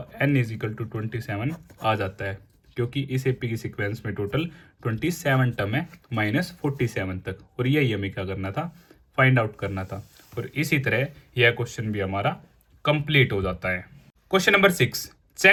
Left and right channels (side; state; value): both; identical; correlation 1.00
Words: n = 27 आ जाता है, क्योंकि इस एपी की सीक्वेंस में टोटल 27 टर्म है -47 तक. और यही हमें क्या करना था, फाइंड आउट करना था. और इसी तरह यह क्वेश्चन भी हमारा कंप्लीट हो जाता है. Question number 6,